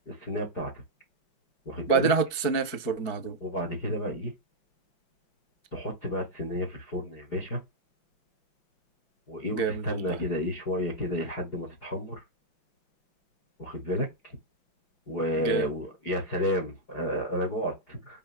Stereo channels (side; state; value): right; late; 4.7 ms